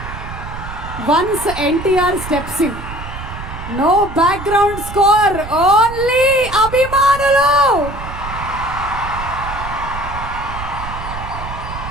once NTR steps in, no background score, only అభిమానులు.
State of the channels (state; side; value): noise; right; rumble, 10 dB below the sound